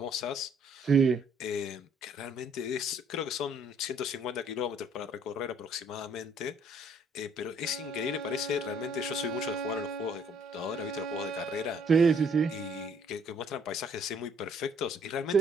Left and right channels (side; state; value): both; normal; correlation 0.63